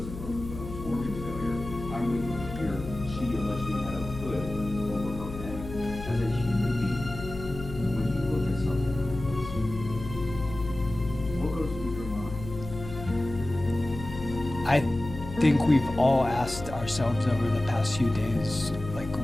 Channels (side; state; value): left; noise; hum, 10 dB below the sound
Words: broken bones, organ failure. I'm reading here, she allegedly had a hood over her head. As a human being, when you look at something like this, what goes through your mind? I think we've all asked ourselves over the past few days, like